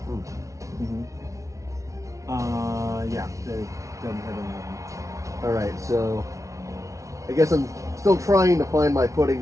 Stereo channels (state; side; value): late; left; 0.15 ms